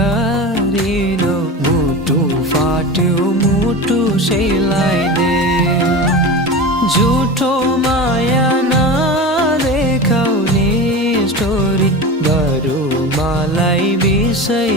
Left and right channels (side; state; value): both; normal; correlation 0.28